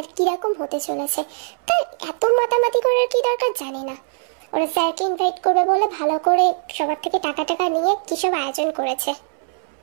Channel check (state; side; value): silent; left; 65 dB below the other